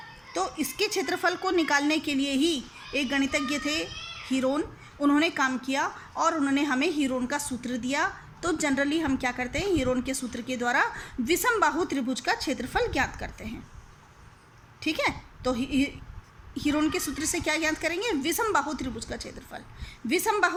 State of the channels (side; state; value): both; identical; correlation 1.00